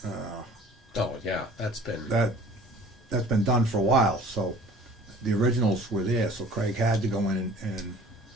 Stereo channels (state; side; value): normal; both; correlation 0.48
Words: Oh, yeah, that's been, that's been done for a while. So the originals were there. So Craig had to go in and